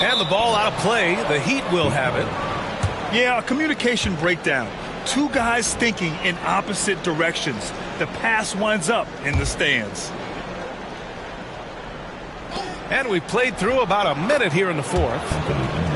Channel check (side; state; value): both; identical; correlation 1.00